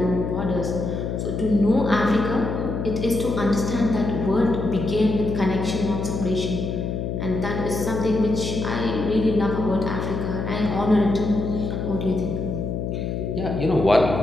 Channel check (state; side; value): noise; left; hum, 3 dB below the sound